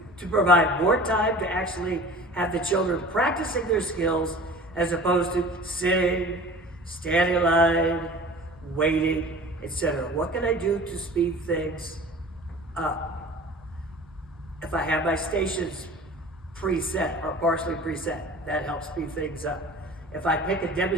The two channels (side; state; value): both; normal; correlation 0.41